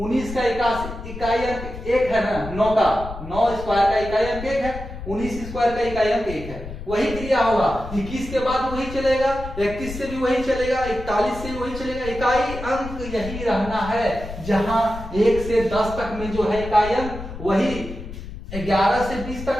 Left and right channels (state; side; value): noise; left; rumble, 10 dB below the sound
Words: का इकाई अंक 1 है ना, 9 का 9 स्क्वायर का इकाई अंक 1 है, 19 स्क्वायर का इकाई अंक 1 है। वही क्रिया होगा। 21 के बाद वही चलेगा, 31 से भी वही चलेगा, 41 से भी वही चलेगा। इकाई अंक यही रहना है, जहां 1 से 10 तक में जो है इकाई अंक वही 11 से 20